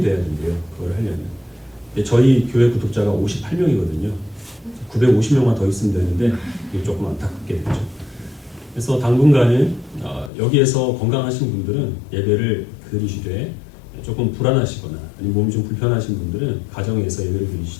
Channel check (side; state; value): right; drops out; at 10.3 s